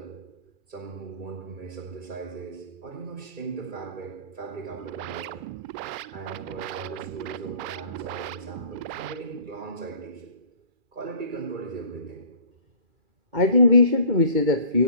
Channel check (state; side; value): late; left; 2.4 ms